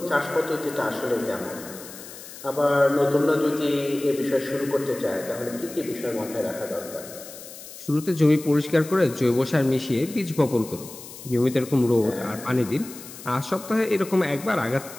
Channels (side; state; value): left; noise; hiss, 15 dB below the sound